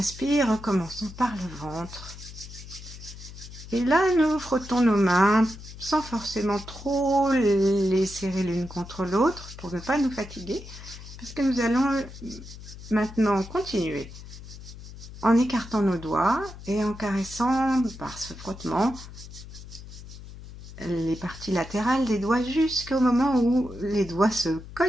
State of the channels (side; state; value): left; noise; hum, 14 dB below the sound